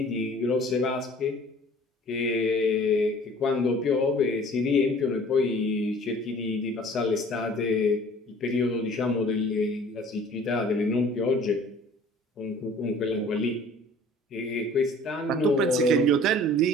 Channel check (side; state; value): both; normal; correlation 0.50